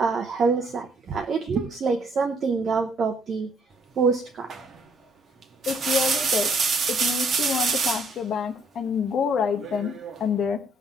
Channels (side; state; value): both; normal; correlation 0.65